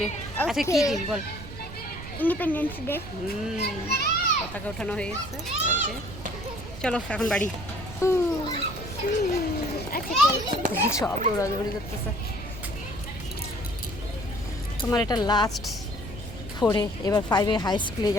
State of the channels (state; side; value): noise; right; rumble, 12 dB below the sound